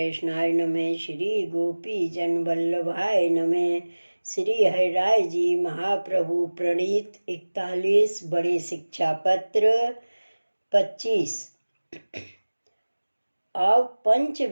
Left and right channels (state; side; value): inverted; both; correlation -1.00